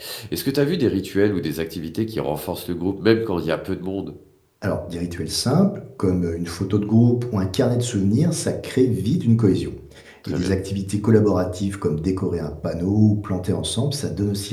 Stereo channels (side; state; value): both; identical; correlation 1.00